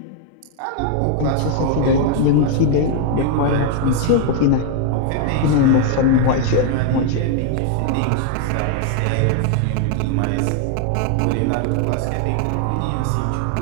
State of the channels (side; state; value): both; different; correlation 0.00